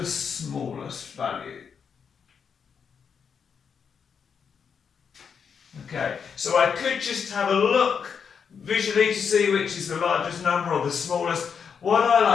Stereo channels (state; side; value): quieter; right; 6.7 dB